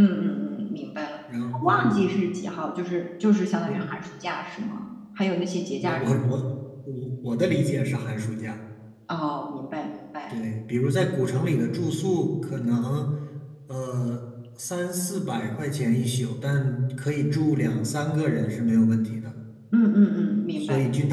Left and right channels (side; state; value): both; identical; correlation 1.00